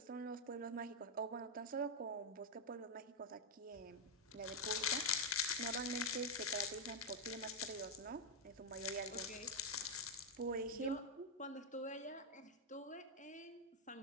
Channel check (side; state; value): both; normal; correlation -0.03